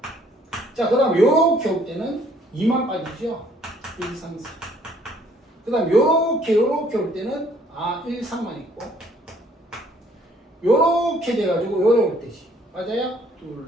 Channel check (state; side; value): normal; both; correlation 0.62